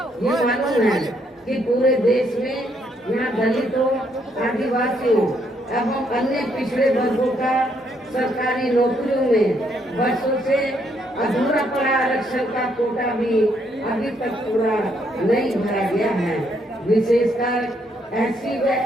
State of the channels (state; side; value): normal; both; correlation 0.72